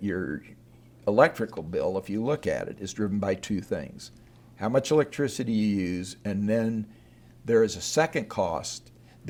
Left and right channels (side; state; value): both; identical; correlation 1.00